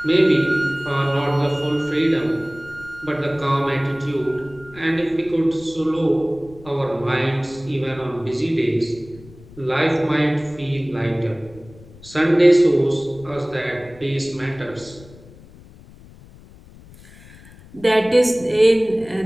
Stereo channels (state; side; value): noise; left; rumble, 22 dB below the sound